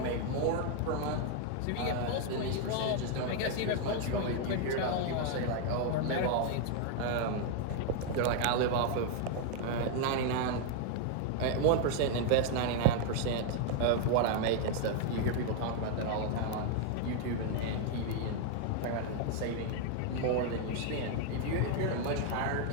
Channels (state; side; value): different; both; correlation 0.00